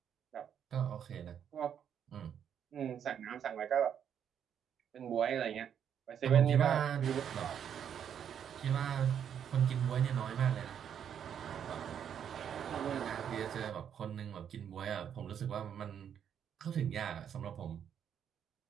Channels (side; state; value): left; quieter; 8.6 dB